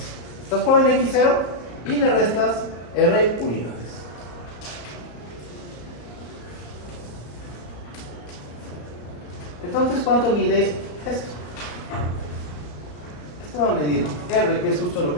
estás parado en X0 y le restas R unidades. Entonces, ¿cuánto mide esto? Esto va a medir R, que es justo lo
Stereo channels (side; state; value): right; late; 34 ms